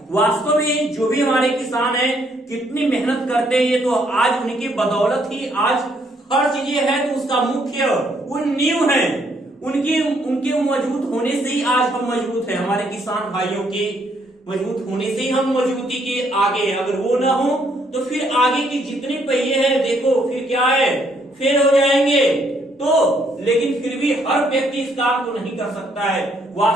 वास्तव में जो भी हमारे किसान हैं कितनी मेहनत करते हैं, ये तो आज उनकी बदौलत ही आज हर चीजें है। तो उसका मुख्य वो नींव है, उनके मजबूत होने से ही आज हम मजबूत हैं। हमारे किसान भाइयों के मजबूत होने से ही हम मजबूती के आगे। अगर वो ना हो तो फिर आगे की जितनी पहिए हैं देखो फिर क्या है, फेल हो जाएंगे। तो लेकिन फिर भी हर व्यक्ति इस काम को नहीं कर सकता है।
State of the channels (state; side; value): normal; both; correlation 0.70